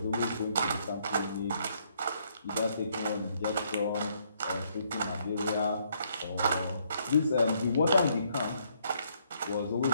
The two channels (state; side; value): inverted; both; correlation -0.70